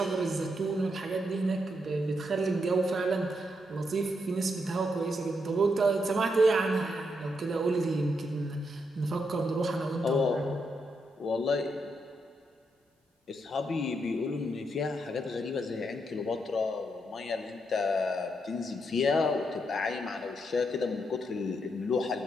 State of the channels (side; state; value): both; normal; correlation 0.80